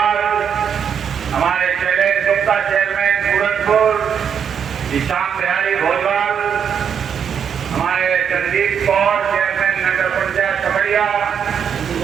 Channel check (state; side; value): quieter; left; 7.6 dB